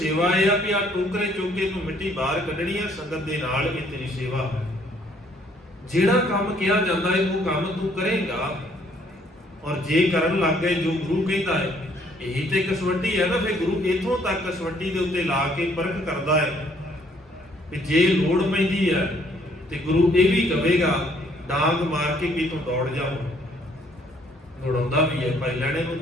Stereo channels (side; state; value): both; normal; correlation 0.64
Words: ਇਹ ਆ ਕਿ ਆ ਟੋਕਰੇ ਚੋਕੇ ਤੂੰ ਮਿੱਟੀ ਬਾਹਰ ਕੱਢਣੀ ਹੈ ਸੰਗਤ ਦੇ ਨਾਲ, ਇਹ ਤੇਰੀ ਸੇਵਾ ਹੈ। ਜਿਹੜਾ ਕੰਮ ਕਿਹਾ ਜਾਂਦਾ ਹੈ ਉਹ ਕੰਮ ਤੂੰ ਕਰੇਗਾ। ਔਰ ਜੇ ਕਰਨ ਲੱਗ ਗਏ ਜੋ ਗੁਰੂ ਕਹਿੰਦਾ ਹੈ, ਇਹੀ ਤੇ ਕਸਵੱਟੀ ਹੈ ਨਾ। ਫਿਰ ਗੁਰੂ ਇਥੋਂ ਤੱਕ ਕਸਵੱਟੀ ਦੇ ਉੱਤੇ ਲਾ ਕੇ ਪਰਖ ਕਰਦਾ ਹੈ ਕਿ ਜੇ ਲੋੜ ਪੈਂਦੀ ਹੈ ਤੇ ਗੁਰੂ ਇਹ ਵੀ ਕਹੇਗਾ ਡਾਂਗ ਮਾਰ ਕੇ ਵੀ ਤੂੰ ਦੌੜ ਜਾਓ। ਦੌੜਾਉਂਦਾ ਵੀ ਹੈ, ਭਾਈ ਲੈਣੇ ਨੂੰ